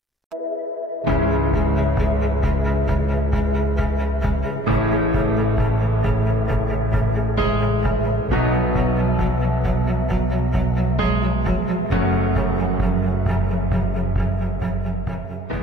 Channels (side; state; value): both; normal; correlation 0.58